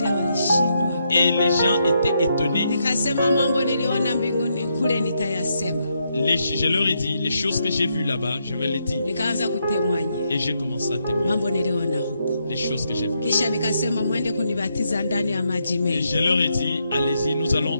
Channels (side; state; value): both; inverted; correlation -0.79